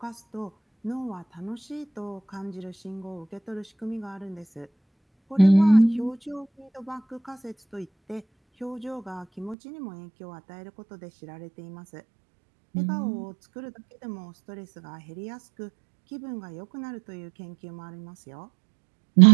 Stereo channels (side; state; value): left; drops out; at 9.6 s